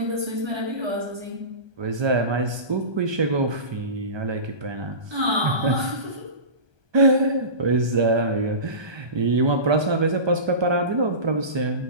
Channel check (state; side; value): late; left; 1.3 ms